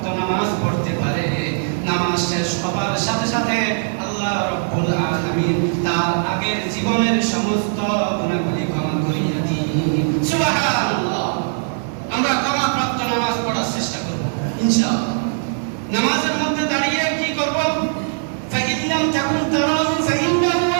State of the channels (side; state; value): left; silent; 55 dB below the other